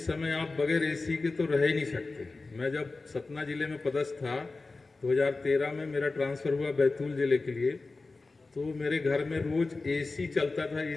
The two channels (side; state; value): right; quieter; 3.6 dB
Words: समय आप बगैर एसी के तो रह ही नहीं सकते। मैं जब सतना जिले में पदस्थ था 2013 में, मेरा ट्रांसफ़र हुआ बैतूल जिले के लिए, तो मेरे घर में रोज एसी चलता था।